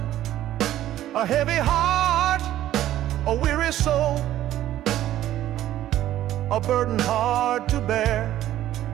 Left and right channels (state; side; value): quieter; left; 13.1 dB